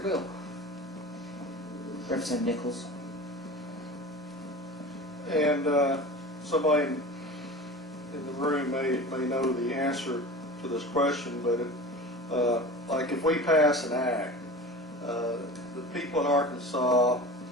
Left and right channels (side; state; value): both; normal; correlation 0.35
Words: bill. Representative Nichols. And somebody in the room may know the answer to this question, but like if we pass an act, the people in Arkansas